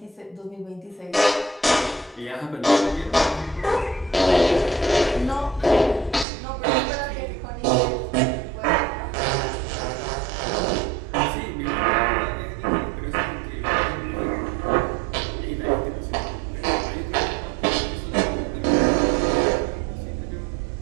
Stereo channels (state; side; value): drops out; left; at 6.2 s